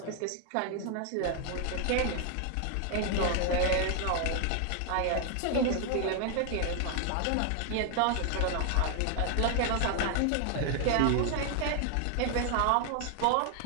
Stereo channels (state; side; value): different; both; correlation 0.00